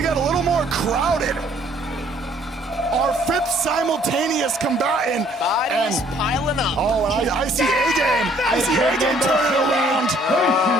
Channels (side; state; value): both; normal; correlation 0.61